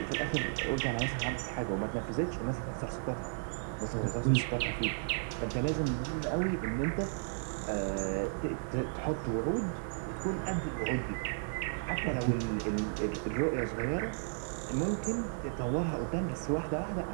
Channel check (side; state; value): left; silent; digital silence